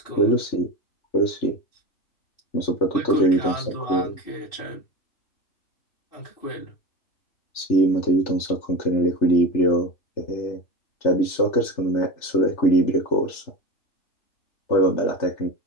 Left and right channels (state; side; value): late; right; 3.4 ms